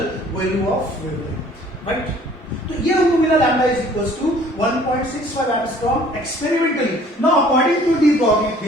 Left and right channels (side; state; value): both; normal; correlation 0.54